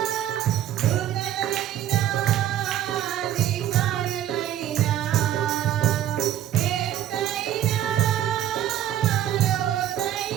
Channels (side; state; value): left; quieter; 11.7 dB